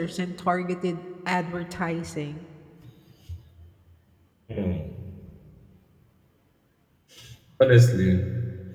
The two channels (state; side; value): identical; both; correlation 1.00